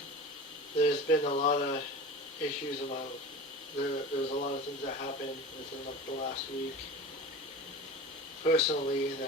there's been a lot of issues about, there's a lot of things that happened within the last week. Personally,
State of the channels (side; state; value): both; normal; correlation 0.33